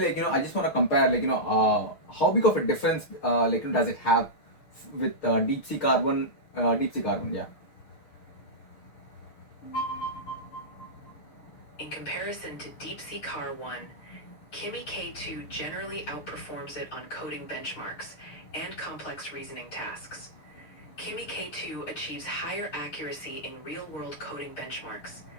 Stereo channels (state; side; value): late; right; 6.6 ms